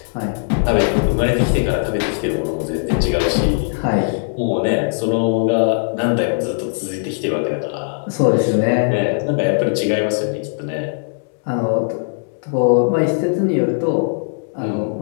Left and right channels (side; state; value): right; silent; 67 dB below the other